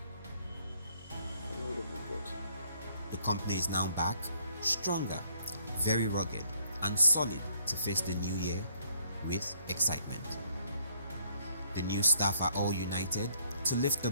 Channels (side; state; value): both; inverted; correlation -0.67